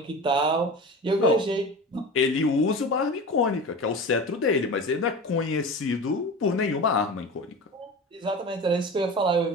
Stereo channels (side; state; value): both; normal; correlation 0.31